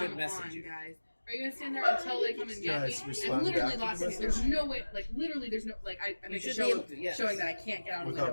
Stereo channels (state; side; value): inverted; both; correlation -1.00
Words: message on, you. guys. Are you gonna stand there until they come and get Guys, me? respond I'm literally back to the lost in it. message. There's no way, like literally, there's no like I make a should show be able of to, yes. showing that I can't get out of the Without